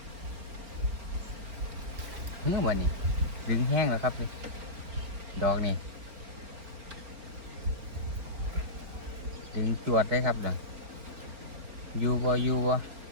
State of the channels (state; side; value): late; left; 4.3 ms